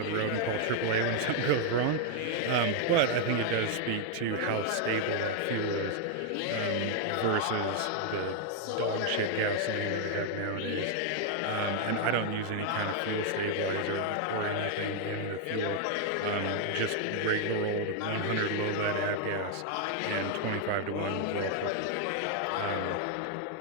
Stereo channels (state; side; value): different; both; correlation 0.00